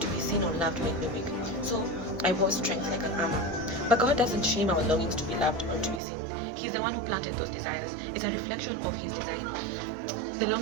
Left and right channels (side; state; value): left; drops out; at 6.0 s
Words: be seen or loved made me weak, so I wore strength like an armor. But God doesn't shame our longings to be loved or to be seen. He's the one who planted those desires. It's a reflection of His design. The